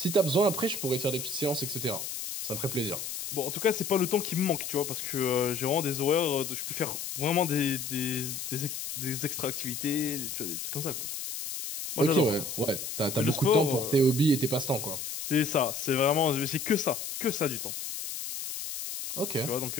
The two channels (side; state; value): left; noise; hiss, 6 dB below the sound